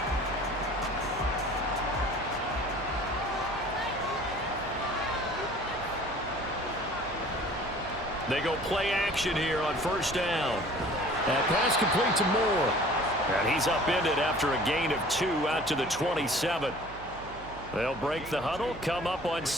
They go play action here on first down. That pass complete to Moore. And he's upended after a gain of 2 out to the 27. They'll break the huddle, come up on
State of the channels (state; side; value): noise; right; hum, 17 dB below the sound